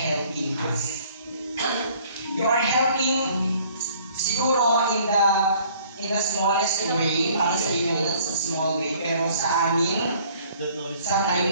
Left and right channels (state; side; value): inverted; both; correlation -0.57